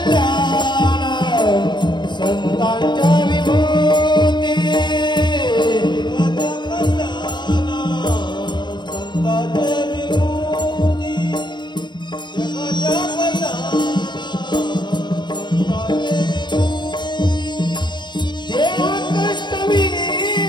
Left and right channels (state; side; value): late; right; 0.22 ms